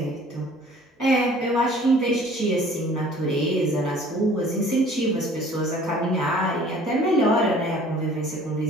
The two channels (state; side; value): normal; both; correlation 0.51